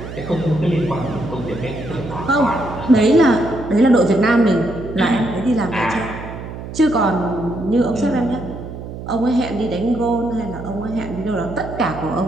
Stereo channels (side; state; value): right; noise; hum, 10 dB below the sound